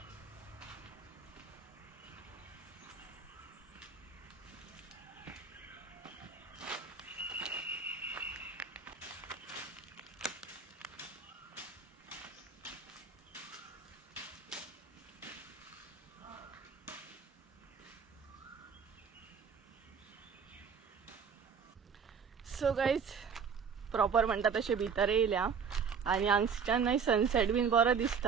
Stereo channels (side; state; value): left; quieter; 6.2 dB